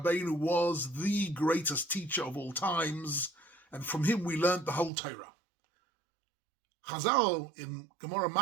was the greatest teacher of all times, and from him we learned the whole Torah. Chazal in Gemara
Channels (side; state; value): left; drops out; at 4.9 s